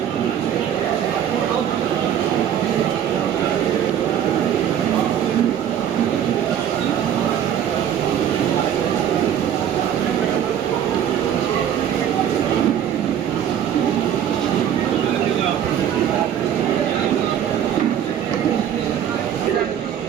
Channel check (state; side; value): quieter; left; 9.7 dB